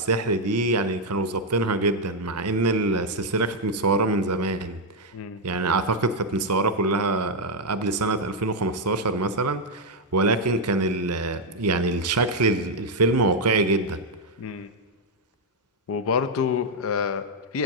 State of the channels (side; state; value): both; normal; correlation 0.00